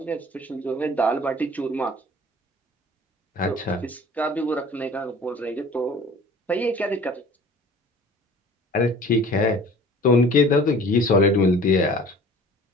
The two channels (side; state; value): both; normal; correlation 0.46